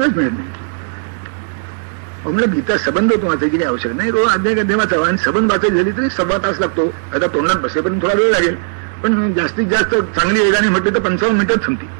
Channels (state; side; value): silent; left; digital silence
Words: मिळत नाही. म्हणलं गीता सबंध होतो वाचायची काही आवश्यक नाही, रोज अध्याय वाचावा. आणि सबंध वाचायची झाली तरी 1.25 तास लागतो. आता तोंडात बसेपर्यंत थोडा वेळ लागेल, पण जास्तीत जास्त चांगली वेगाने म्हटली तर 55 मिनिटात संपते.